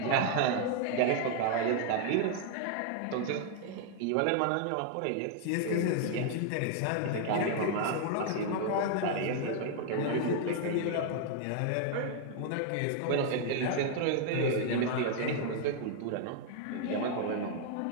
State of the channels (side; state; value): both; different; correlation 0.00